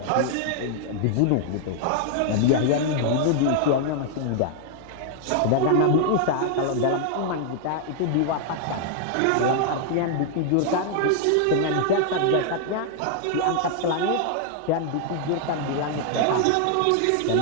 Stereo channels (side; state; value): both; different; correlation 0.00